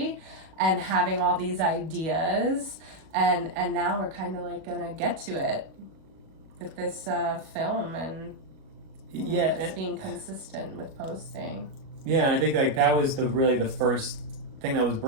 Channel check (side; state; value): left; late; 37 ms